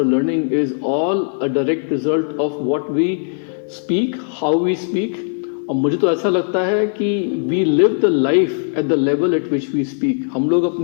learning is all a direct result of what we speak, how we speak. और मुझे तो ऐसा लगता है कि we live the life at the level at which we speak. हम लोग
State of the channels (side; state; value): right; silent; 57 dB below the other